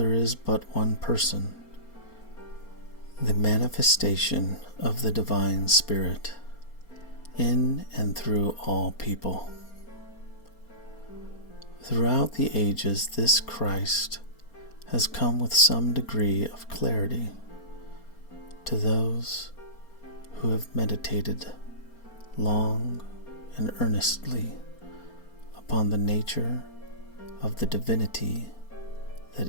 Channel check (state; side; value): late; right; 4.3 ms